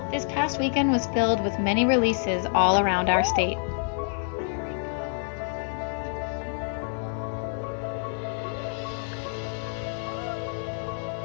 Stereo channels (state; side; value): silent; right; 60 dB below the other